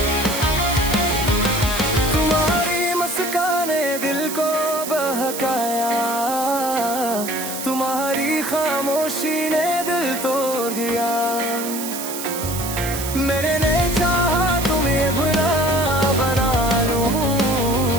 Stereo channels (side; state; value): right; noise; hiss, 7 dB below the sound